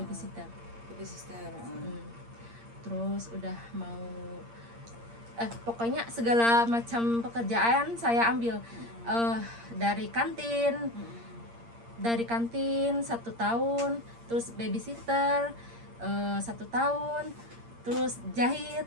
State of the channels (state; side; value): late; left; 8.6 ms